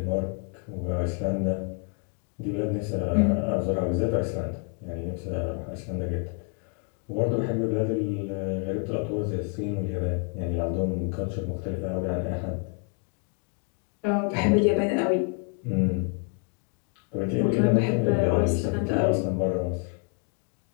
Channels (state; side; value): quieter; right; 37.5 dB